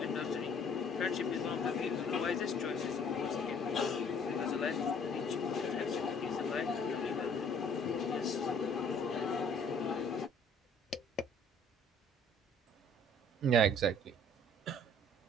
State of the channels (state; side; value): normal; both; correlation 0.57